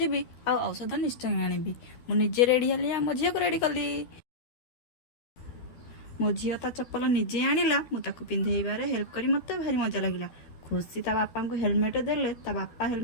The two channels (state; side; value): late; right; 12 ms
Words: ଯିବି, ଆଉ ଔଷଧ ନିଶ୍ଚୟ ଆଣିବି। ମୁଁ ନିଜେ ରେଡି ହେଲି, ଆଉ ମୋ ଝିଅକୁ ରେଡି କଲି। ମୋ ଝିଅ ତା ଚପଲ ନିଜେ ଆଣିଲା, ମୁଁ ତାକୁ ପିନ୍ଧେଇବାରେ ହେଲ୍ପ କରି ମୋତେ ଭାରି ମଜା ଲାଗିଲା। ଖୁସି ତା ବାପାଙ୍କୁ ହେଲମେଟ ଦେଲେ, ତା ବାପା